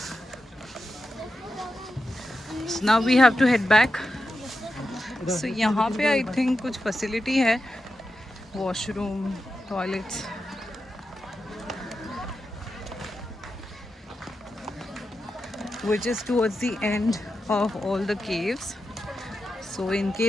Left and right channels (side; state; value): both; normal; correlation 0.89